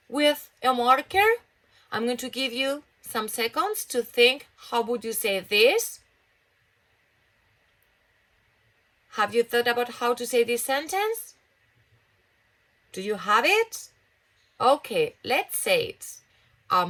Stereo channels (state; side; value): identical; both; correlation 1.00